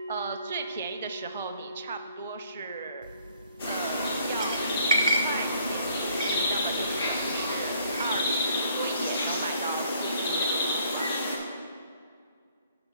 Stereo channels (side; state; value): both; inverted; correlation -0.63